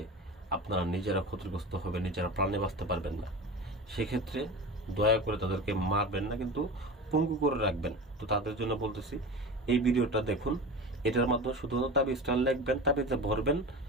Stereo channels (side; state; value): both; normal; correlation 0.31